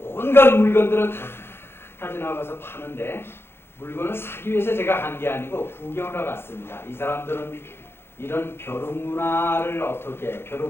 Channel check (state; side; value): late; right; 0.11 ms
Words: 물건들을 다 가져나가서 파는데 물건을 사기 위해서 제가 간 게 아니고 구경하러 갔습니다. 이 사람들은 이런 벼룩 문화를 어떻게,